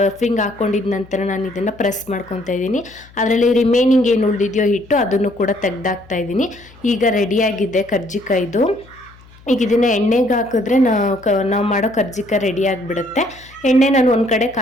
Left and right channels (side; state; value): left; noise; hum, 25 dB below the sound